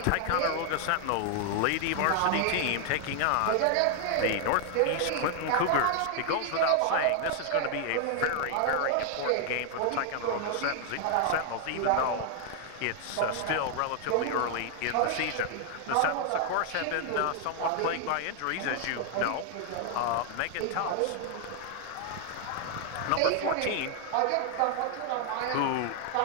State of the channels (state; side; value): different; both; correlation 0.00